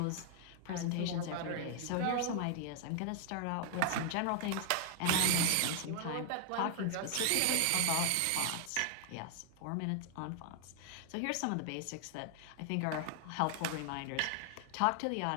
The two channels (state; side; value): different; both; correlation 0.00